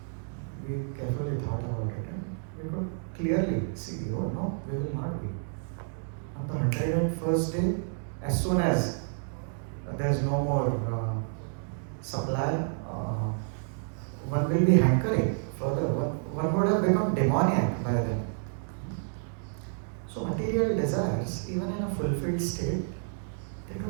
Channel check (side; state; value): left; silent; 58 dB below the other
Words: We carefully thought about it and we could clearly see, oh no, we will not be. On the 101st day, as soon as there is no more supply, one will be hankering further. One would have become demoniac by then. So material desires, even in a fulfilled state, they